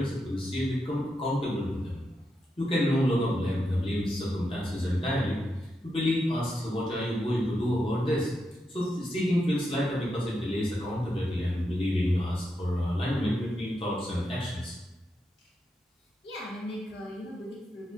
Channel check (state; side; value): normal; both; correlation 0.85